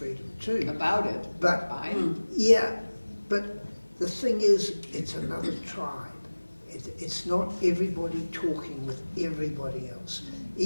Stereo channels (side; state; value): both; inverted; correlation -1.00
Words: too. About it, But by it. yeah, but the thing is, it's another tribe. It's not everybody talking with everybody else.